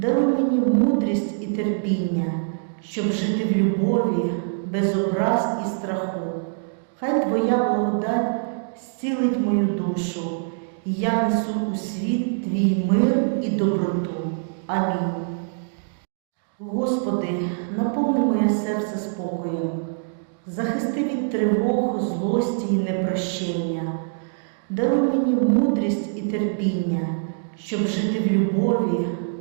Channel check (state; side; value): silent; left; digital silence